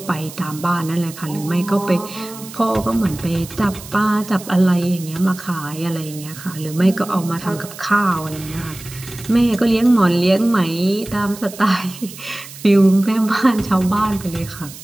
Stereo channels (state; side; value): noise; right; hiss, 15 dB below the sound